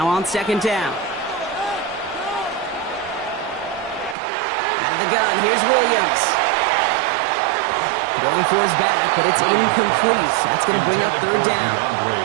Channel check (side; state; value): left; drops out; at 4.2 s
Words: on 2nd down. Out of the gun, here's Williams. Going for his back, but it's incomplete. That's going to bring up 3rd down.